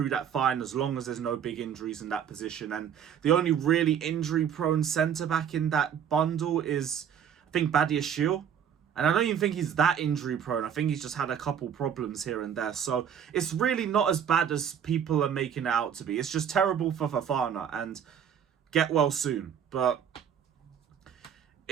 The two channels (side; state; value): left; quieter; 8.4 dB